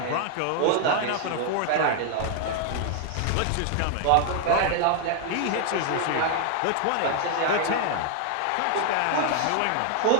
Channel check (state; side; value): different; both; correlation 0.00